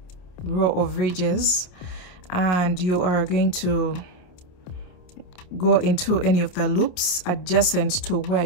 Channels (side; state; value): right; late; 28 ms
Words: row of ridges, and you are going to go into any of the loops adjacent to where